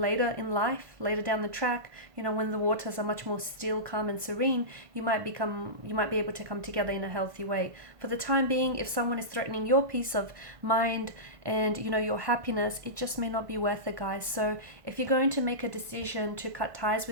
in life, later down the track, when the waters are much more still, calm and serene, you might be able to come together in a healthy way. For the time being, if someone is threatening your peace of mind and your happiness, it just may not be worth it, guys. So if you're going to make a decision to cut ties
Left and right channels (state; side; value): late; left; 1.5 ms